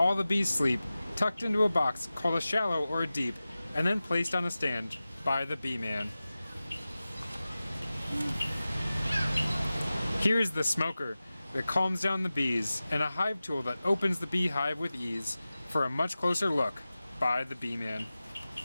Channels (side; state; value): both; inverted; correlation -0.96